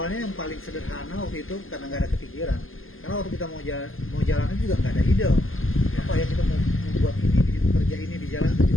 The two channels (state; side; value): late; right; 0.59 ms